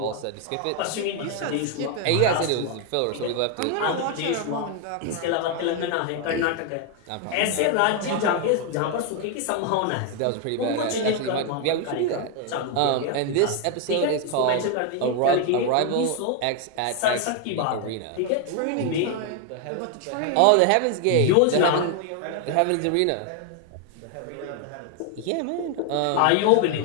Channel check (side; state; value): both; different; correlation 0.01